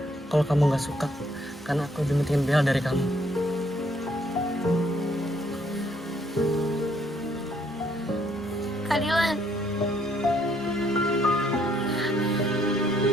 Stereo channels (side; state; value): both; normal; correlation 0.68